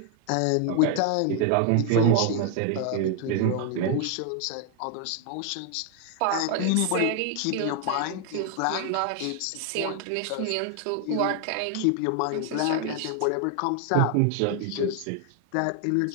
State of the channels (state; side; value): different; both; correlation 0.00